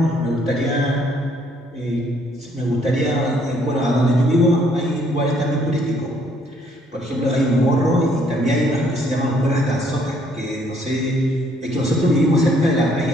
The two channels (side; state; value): both; normal; correlation 0.66